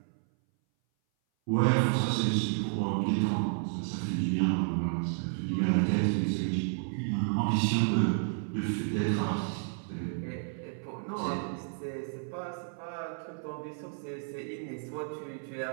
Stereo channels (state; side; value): silent; left; 57 dB below the other